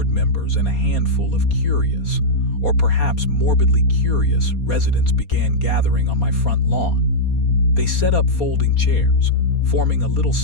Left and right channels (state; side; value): late; right; 4.2 ms